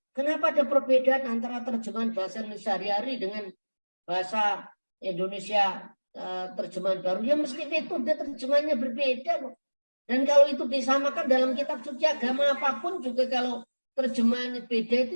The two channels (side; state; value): both; inverted; correlation -1.00